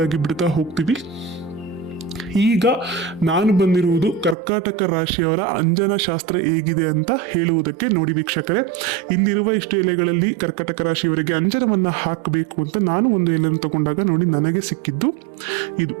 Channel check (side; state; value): left; drops out; at 4.4 s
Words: ಆಗಿ ಬಿಡ್ತಾ ಹೋಗ್ತೀವಿ. ಈಗ ನಾನು ಬಂದಿರುವುದು ಕರ್ಕಾಟಕ ರಾಶಿಯವರ ಅಂಜನ ಶಾಸ್ತ್ರ ಹೇಗಿದೆ ಅಂತ ಹೇಳುವುದಕ್ಕೆ. ನೋಡಿ ವೀಕ್ಷಕರೇ, ಇಲ್ಲಿರುವ ಇಷ್ಟು ಎಲೆಗಳಲ್ಲಿ ಕರ್ಕಾಟಕ ರಾಶಿಯವರಿಗೆ ಅಂಜನವನ್ನ ಹಾಕಬೇಕು ಅಂತ ನಾನು ಒಂದು ಎಲೆಯನ್ನು ತಗೊಂಡಾಗ ನೋಡಿ ನನಗೆ ಸಿಕ್ಕಿದ್ದು